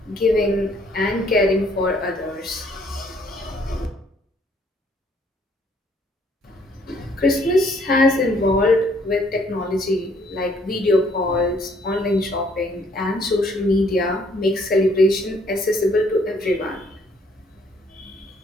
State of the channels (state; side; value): normal; both; correlation 0.65